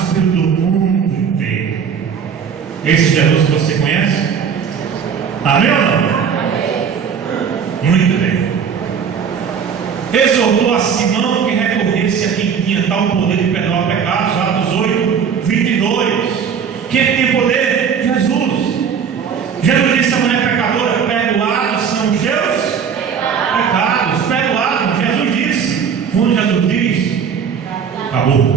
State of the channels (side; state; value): left; quieter; 7.0 dB